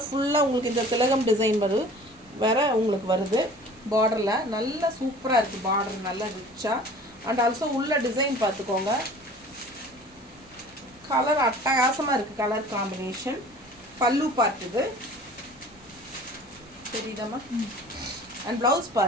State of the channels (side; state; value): both; normal; correlation 0.45